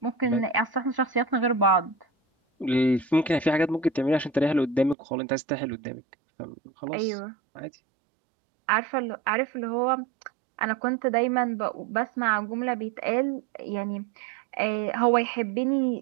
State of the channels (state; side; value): drops out; left; at 5.0 s